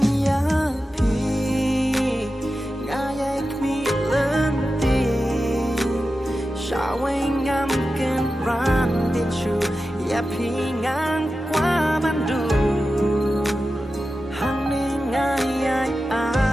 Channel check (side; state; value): both; normal; correlation 0.92